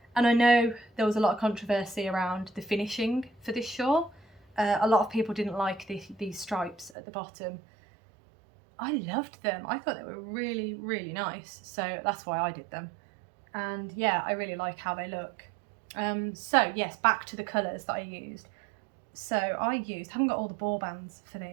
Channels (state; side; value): drops out; left; at 7.0 s